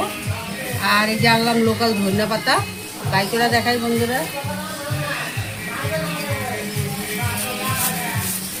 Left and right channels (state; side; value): identical; both; correlation 1.00